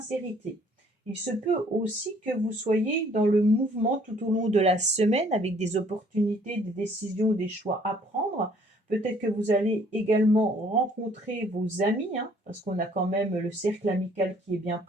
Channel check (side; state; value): both; normal; correlation 0.60